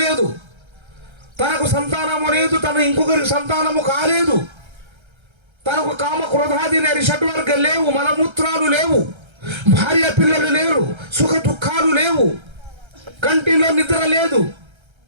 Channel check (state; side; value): late; left; 1.3 ms